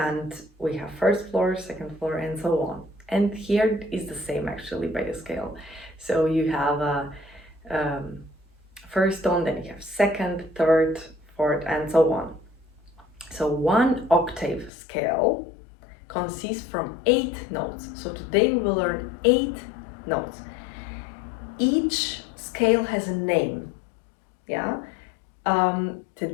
we have first floor, second floor, and so on. And here is the same actually by the scale. So you have a first tone, then you have second, third, fourth, and so on. So one octave scale consists from 8 notes. So today we will learn 8 notes. Each scale has a name. Yeah.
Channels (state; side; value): drops out; right; at 14.7 s